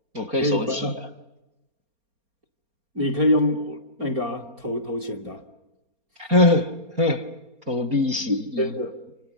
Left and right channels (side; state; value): left; late; 4.3 ms